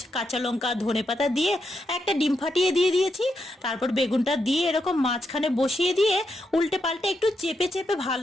কাঁচা লঙ্কা, ধনেপাতা দিয়ে একটা ডিম ফাটিয়ে দিয়ে দিয়েছি। তারপর বেগুনটা দিয়ে এরকম মাঝখানে বসিয়ে দিয়ে উল্টে পাল্টে একটু চেপে চেপে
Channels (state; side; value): normal; both; correlation 0.83